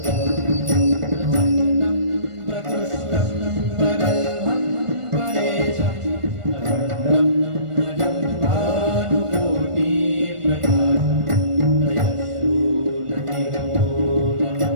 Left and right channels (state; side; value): late; left; 1.4 ms